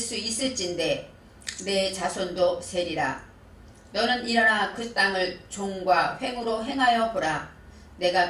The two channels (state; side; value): identical; both; correlation 1.00